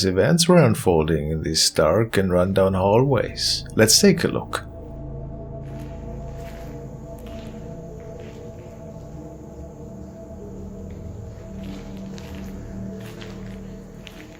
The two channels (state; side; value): identical; both; correlation 1.00